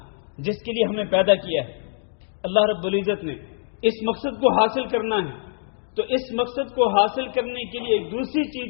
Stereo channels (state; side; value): silent; right; digital silence